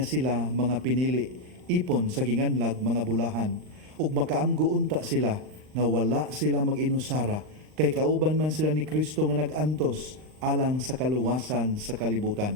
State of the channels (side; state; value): left; late; 39 ms